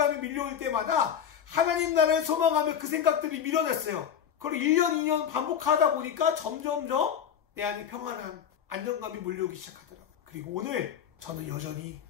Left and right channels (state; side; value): quieter; right; 8.5 dB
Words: 밀려올 때마다 하나님 나라를 소망하며 그 생각들이 밀어냈어요. 그걸 1년, 2년 반복하다 보니까 점점점 내 안에 평안한 안정감이 몰려오기 시작하더라고요. 그리고 오늘 저는 여전히